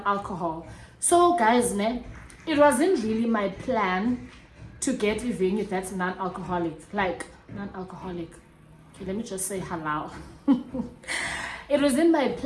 so guys, it wasn't really my plan to get a venue that's non-alcoholic. Like non-alcoholic. Okay, let me just say halal. It wasn't my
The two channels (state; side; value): identical; both; correlation 1.00